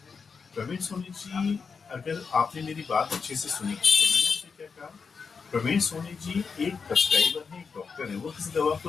प्रवीण सोनी जी, अगर आपने मेरी बात अच्छे से सुनी तो मैंने आपसे क्या कहा, प्रवीण सोनी जी एक प्रेस्क्राइबर है, एक डॉक्टर है। वो किसी दवा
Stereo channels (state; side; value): quieter; right; 5.4 dB